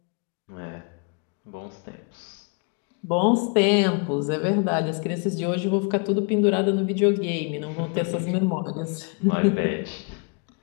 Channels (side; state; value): right; quieter; 35.6 dB